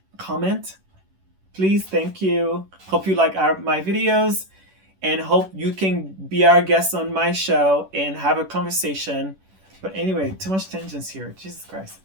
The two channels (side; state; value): left; late; 11 ms